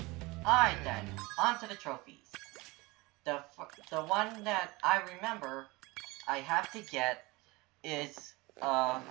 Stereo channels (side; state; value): left; quieter; 23.2 dB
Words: Alright then, on to the trophies. The one that I remember I have to get is,